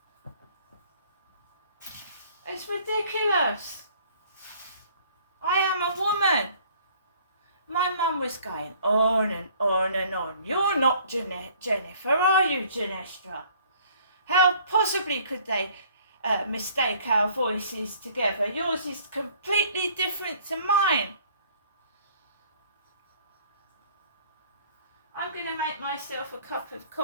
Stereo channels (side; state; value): both; inverted; correlation -0.56